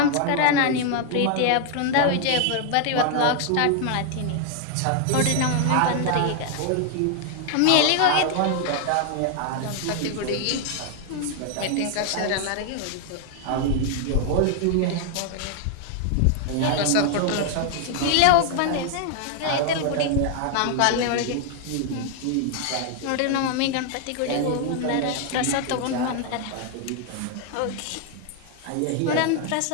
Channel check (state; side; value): different; both; correlation 0.00